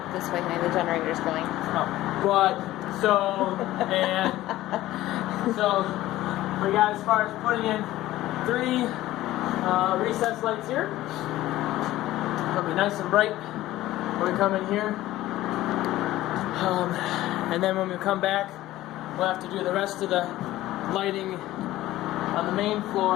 this way, honey. The generator's going. So we got as far as putting in 3 recessed lights here. It'll be nice and bright when we come in here. And then when we come back, we'll have to do the rest of the lighting on the main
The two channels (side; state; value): right; quieter; 15.6 dB